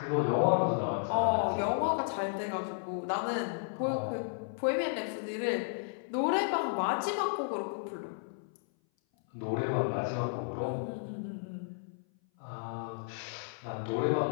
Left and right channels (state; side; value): silent; right; 56 dB below the other